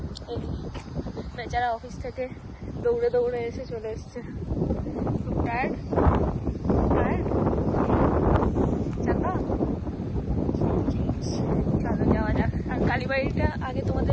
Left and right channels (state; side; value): identical; both; correlation 1.00